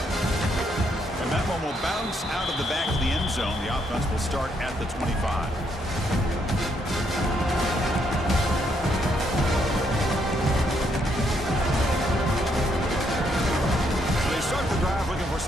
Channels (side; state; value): both; normal; correlation 0.74